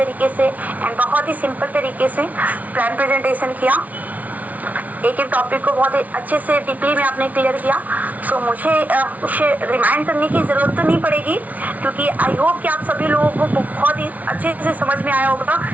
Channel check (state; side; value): late; left; 0.073 ms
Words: से एंड बहुत ही सिंपल तरीके से प्लान प्रेजेंटेशन किया, एक एक टॉपिक को बहुत ही अच्छे से डीपली में आपने क्लियर किया। सो मुझे उसे रिमाइंड करने की ज़रूरत तो नहीं पड़ेगी क्योंकि आई होप कि आप सभी लोगों को बहुत ही अच्छे से समझ में आया होगा,